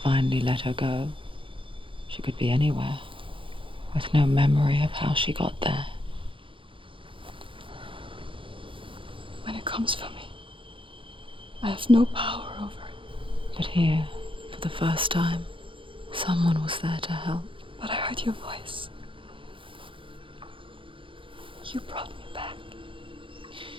let her go, she could be anywhere, with no memory of how she got there. When it comes for me, I have no power over it. But here, for the first time, someone was there to help. But I heard your voice. You brought me back.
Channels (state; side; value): late; left; 0.25 ms